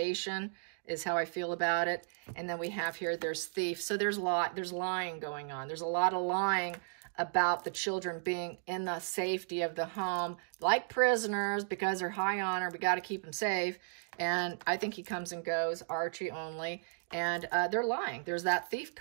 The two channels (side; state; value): left; silent; digital silence